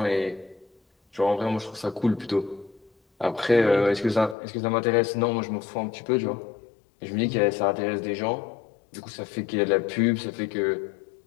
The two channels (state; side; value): drops out; right; at 4.4 s